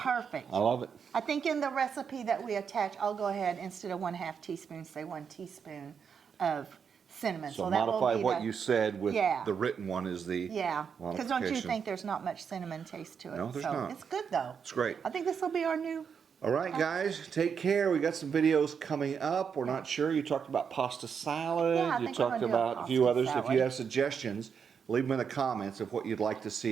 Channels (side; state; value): left; quieter; 6.7 dB